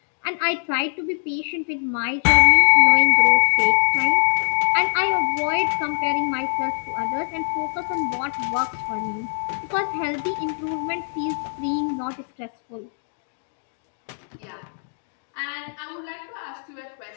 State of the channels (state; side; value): silent; right; digital silence